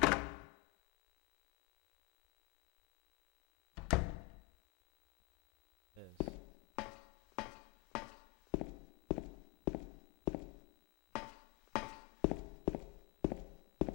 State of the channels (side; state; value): right; quieter; 25.6 dB